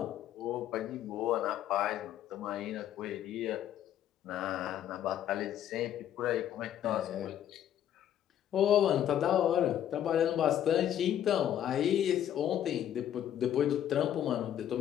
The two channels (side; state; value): right; quieter; 10.7 dB